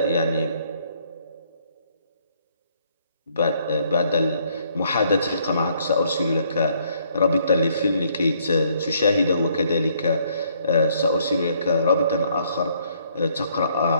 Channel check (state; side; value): inverted; both; correlation -0.67